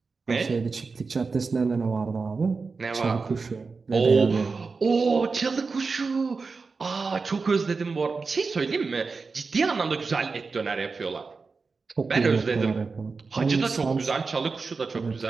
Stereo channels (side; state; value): left; quieter; 4.5 dB